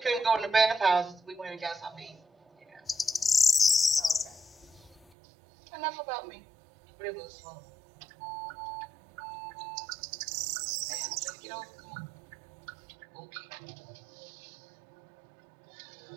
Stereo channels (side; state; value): left; drops out; at 5.1 s